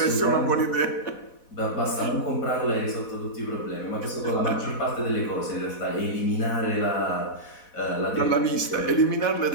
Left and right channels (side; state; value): right; late; 4.1 ms